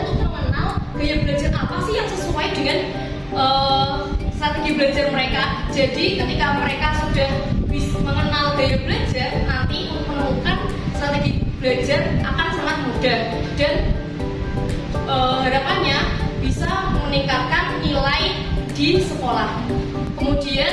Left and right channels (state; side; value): identical; both; correlation 1.00